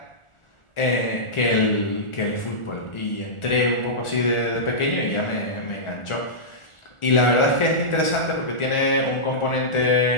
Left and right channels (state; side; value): late; right; 1.4 ms